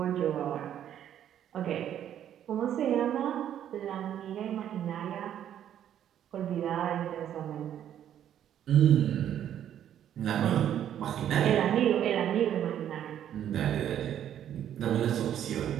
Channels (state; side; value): quieter; left; 10.4 dB